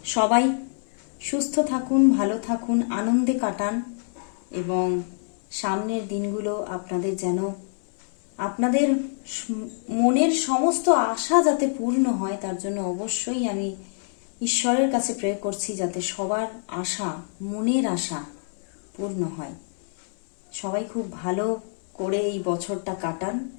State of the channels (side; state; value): right; silent; digital silence